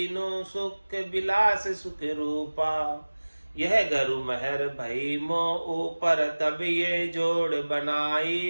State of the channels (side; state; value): both; inverted; correlation -1.00